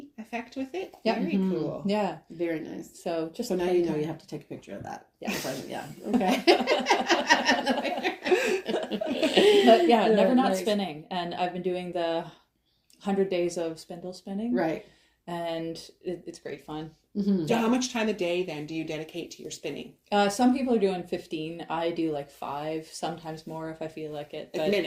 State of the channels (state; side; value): identical; both; correlation 1.00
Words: effect with it? Yeah. Very cool. Yeah. Very nice. So just... So now you know you have to take a picture of that. Yeah. Okay. But never not spinning. And I've been doing the 100 days of spindle spinning. Right. And it's great fun. Mm-hmm. So how much time a day then do you dedicate to your spinning? Some people are doing 15. I do like 5, sometimes more if I feel like it. Like But